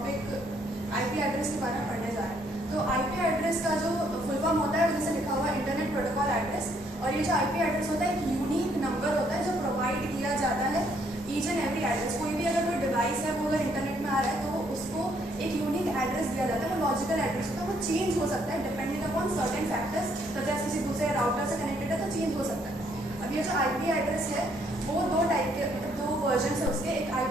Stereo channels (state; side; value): normal; both; correlation 0.69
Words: IP address के बारे में पढ़ने जा रहे हैं। तो आईपी एड्रेस का जो फुल फॉर्म होता है जैसे लिखा हुआ इंटरनेट प्रोटोकॉल एड्रेस, और ये जो आईपी एड्रेस होता है एक यूनिक नंबर होता है जो प्रोवाइड किया जाता है ईच एंड एवरी एड्रेस। कोई भी अगर कोई डिवाइस है वो अगर इंटरनेट में आ रहा है तो उसको एक यूनिक एड्रेस दिया जाता है, वो लॉजिकल एड्रेस होता है, वो चेंज हो सकता है depending upon certain factors, such as किसी दूसरे राउटर से कनेक्टेड है तो चेंज हो सकता है। अब ये जो आईपी एड्रेस है वो दो टाइप के मतलब दो वर्जन है उसके, एक